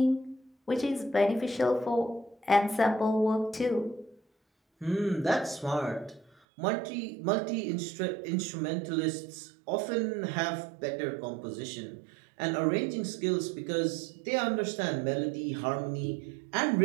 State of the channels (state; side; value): drops out; left; at 6.3 s